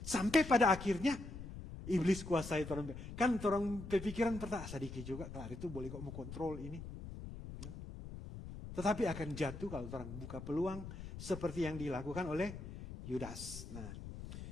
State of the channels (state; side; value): noise; left; rumble, 10 dB below the sound